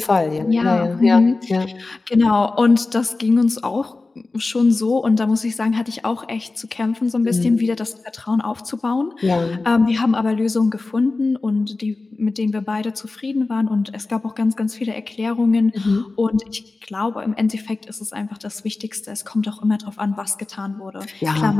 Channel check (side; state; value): right; quieter; 3.5 dB